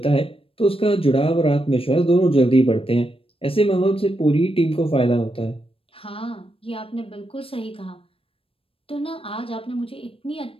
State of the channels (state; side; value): late; right; 0.27 ms